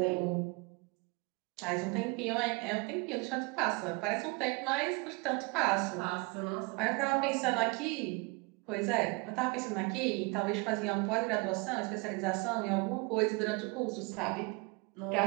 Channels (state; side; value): quieter; left; 28.8 dB